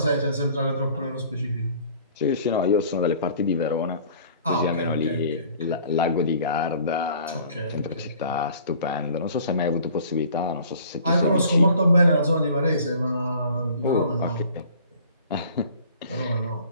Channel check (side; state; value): both; inverted; correlation -0.51